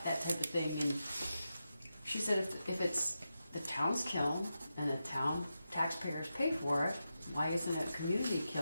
type of thing. And she said if it's the town's kiln and the town taxpayers pay for it, why isn't it a community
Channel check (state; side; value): inverted; both; correlation -0.89